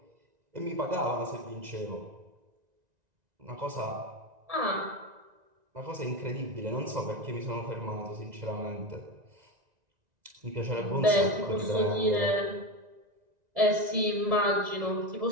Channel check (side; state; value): left; late; 1.9 ms